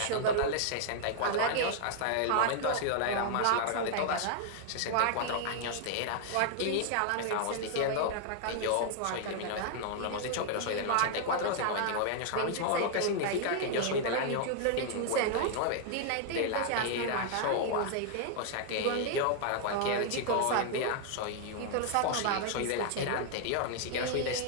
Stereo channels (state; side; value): different; both; correlation 0.00